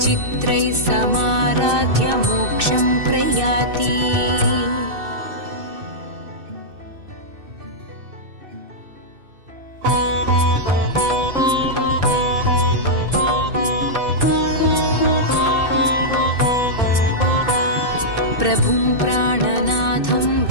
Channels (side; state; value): left; late; 2.6 ms